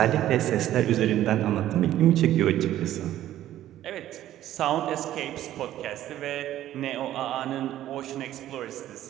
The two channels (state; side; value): quieter; left; 13.0 dB